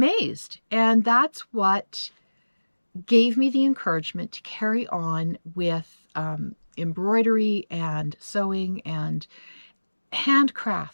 And that's what gave me the encouragement to carry on with embroidery and sewing and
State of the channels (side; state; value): both; inverted; correlation -1.00